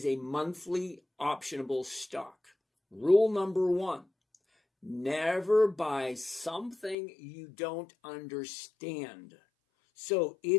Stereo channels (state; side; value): drops out; right; at 7.0 s